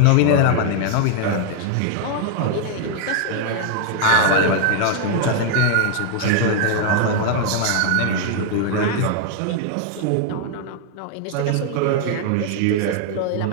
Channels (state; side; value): different; both; correlation 0.00